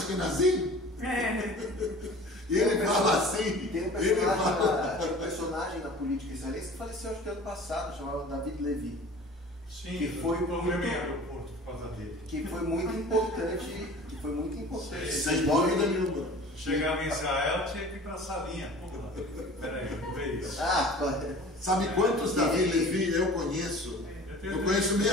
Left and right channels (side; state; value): both; normal; correlation 0.43